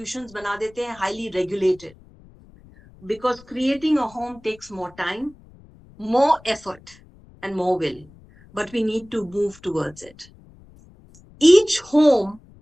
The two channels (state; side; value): noise; left; rumble, 24 dB below the sound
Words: बना देते हैं, highly regulated. Because creating a home takes more time, more effort, and more will. But we need to move towards it. Each home